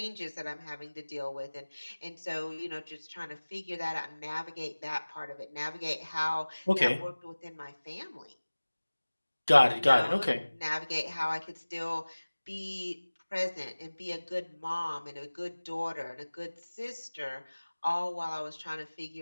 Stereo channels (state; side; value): inverted; both; correlation -1.00